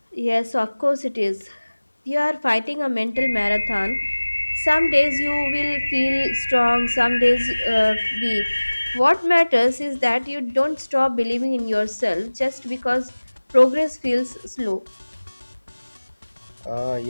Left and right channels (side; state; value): both; inverted; correlation -1.00